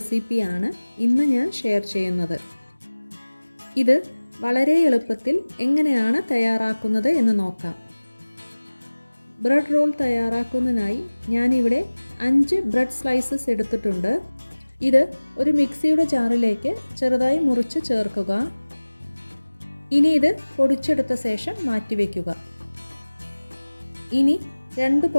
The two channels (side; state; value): both; inverted; correlation -1.00